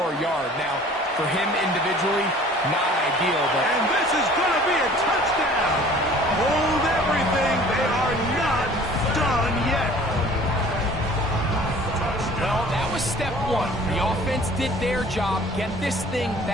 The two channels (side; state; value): both; normal; correlation 0.49